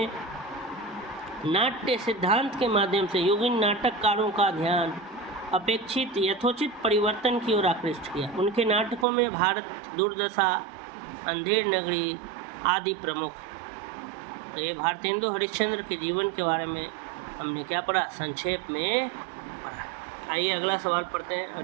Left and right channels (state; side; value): drops out; left; at 9.1 s